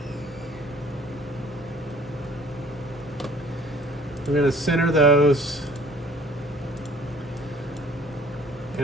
I'm going to center those.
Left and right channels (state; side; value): normal; both; correlation 0.53